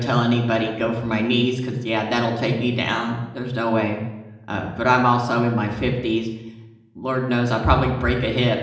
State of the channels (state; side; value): identical; both; correlation 1.00